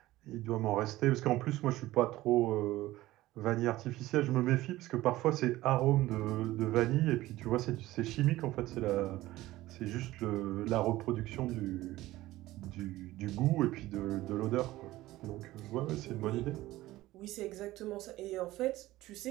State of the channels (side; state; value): left; quieter; 16.8 dB